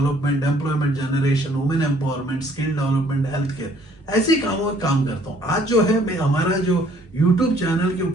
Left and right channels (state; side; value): normal; both; correlation 0.61